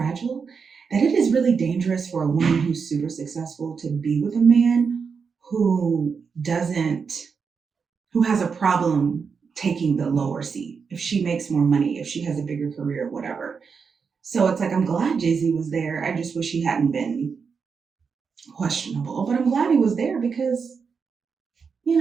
that it is really dangerous for a woman who's super successful to be with a man who doesn't, who has a problem taking the lower seat if she makes more money, if she has a bigger career, whatever. So it's like, I'm glad Jay Z was there. I just wish he hadn't been questionable, but I'm glad he was there because, you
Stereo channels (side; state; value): left; quieter; 5.7 dB